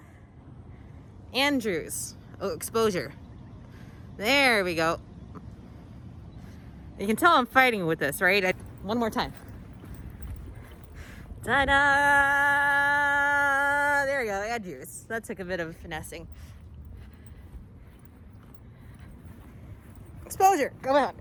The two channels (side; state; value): both; identical; correlation 1.00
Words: Andrews. Oh, exposure. There we go. You can tell I'm fighting with this, right? One more time. Ta-da! There we go, Andrews. That took a bit of finessing. Exposure. Come on,